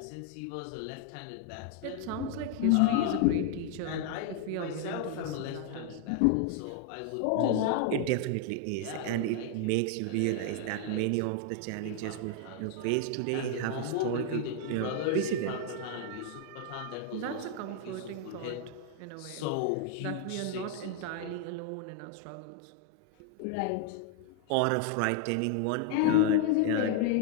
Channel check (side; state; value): both; different; correlation 0.00